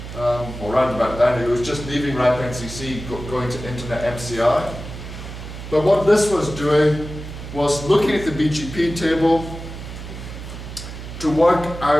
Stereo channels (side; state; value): right; noise; hum, 10 dB below the sound